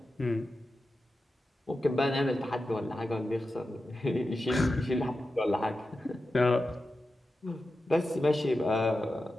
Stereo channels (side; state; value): both; normal; correlation 0.91